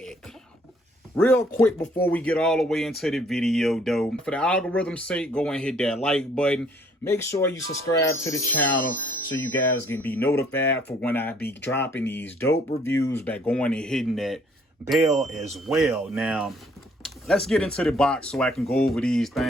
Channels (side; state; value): both; normal; correlation 0.62